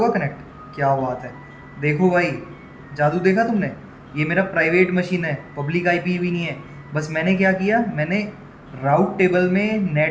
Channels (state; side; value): identical; both; correlation 1.00